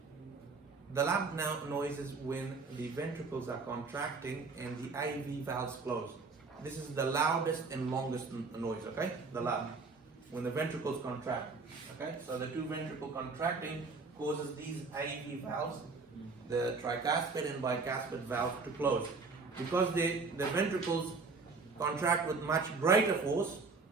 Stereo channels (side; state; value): left; quieter; 4.3 dB